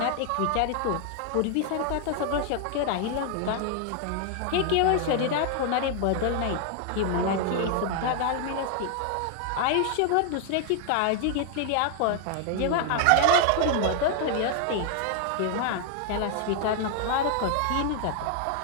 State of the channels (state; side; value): different; both; correlation 0.00